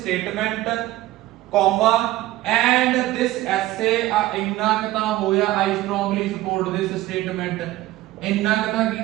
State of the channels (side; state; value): left; quieter; 16.4 dB